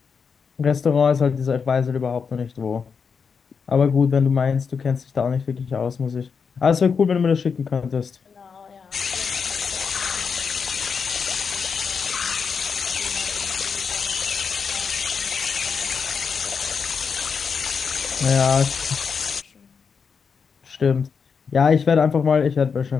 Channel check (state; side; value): quieter; right; 5.9 dB